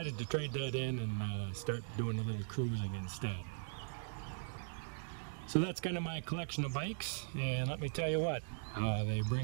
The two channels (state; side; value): silent; left; digital silence